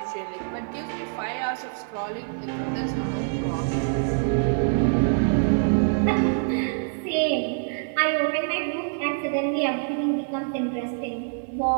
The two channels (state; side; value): silent; left; digital silence